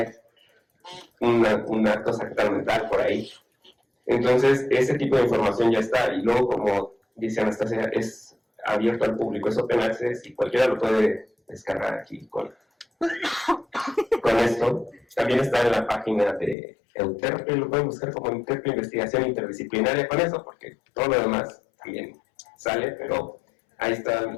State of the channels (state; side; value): drops out; right; at 16.6 s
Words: un acto sacramental por ahí. Entonces, ese tipo de información ya está, y luego, como dice Anastasia, es abierto al público, es open access, y cualquiera lo puede descargar aquí con esto. También está en la página de Euterpe, lo pueden buscar como Euterpe Investigación Interdisciplinaria con eso, porque todo lo demás también sale, pero ahí está